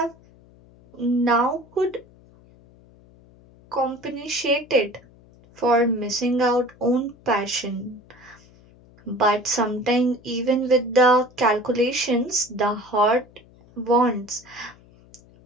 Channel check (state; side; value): noise; left; hum, 26 dB below the sound